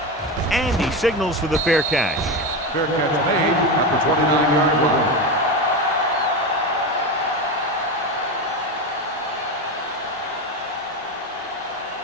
And he signals for the fair catch. Fair catch made at the 29-yard line.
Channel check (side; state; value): both; normal; correlation 0.18